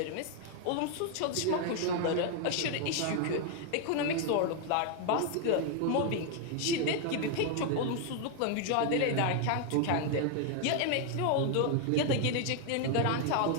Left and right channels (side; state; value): both; different; correlation 0.00